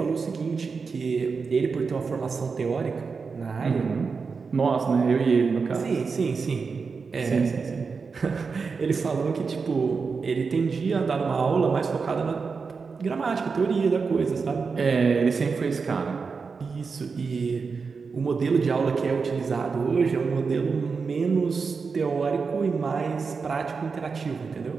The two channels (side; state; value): left; quieter; 5.0 dB